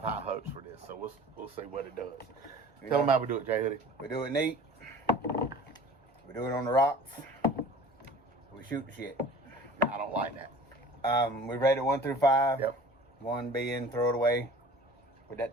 high hopes for this, so we'll see what it does. Tell them how we do it, Jay Hoodie. We do it neat. We do it on the rocks. We shoot the shit. I don't like that. We rate it 1 through 5. Yep. 1 being throw it away with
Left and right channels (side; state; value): both; normal; correlation 0.44